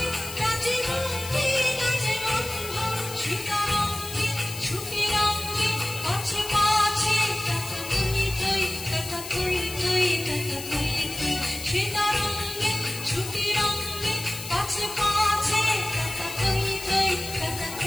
নাচে মুক্তি নাচে বন্ধ সীতারঙ্গে ছুটিরঙ্গে পাছে পাছে টাটা থই থই টাটা থই থই টাটা থই থই সীতারঙ্গে ছুটিরঙ্গে পাছে পাছে টাটা থই থই টাটা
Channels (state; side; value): noise; left; hiss, 10 dB below the sound